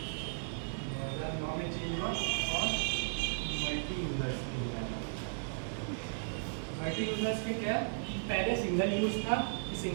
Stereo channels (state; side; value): silent; left; 54 dB below the other